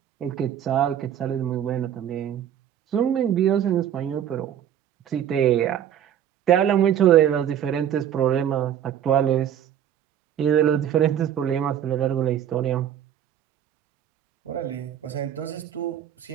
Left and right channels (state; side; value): quieter; left; 10.0 dB